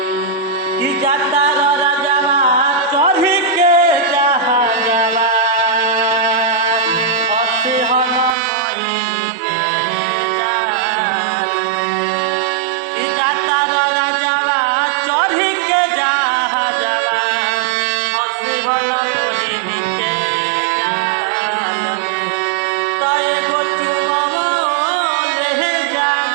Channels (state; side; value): drops out; left; at 8.3 s